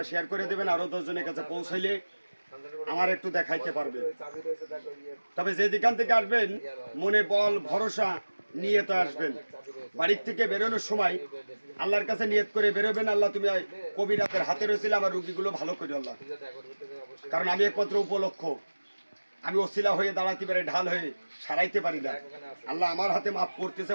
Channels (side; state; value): both; inverted; correlation -1.00